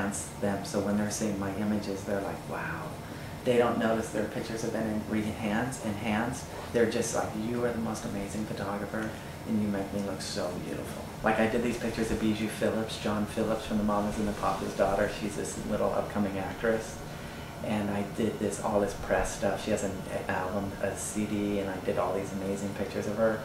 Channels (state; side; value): identical; both; correlation 1.00